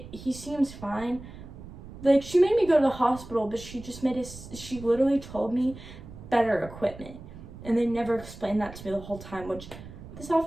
he seems fine. Like, she made me go to the hospital, but she literally told me better equipment. And they never explained that to me the whole time, which this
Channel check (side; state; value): right; noise; rumble, 15 dB below the sound